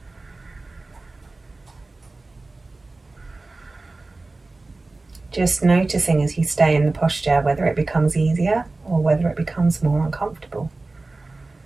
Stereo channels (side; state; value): left; quieter; 3.3 dB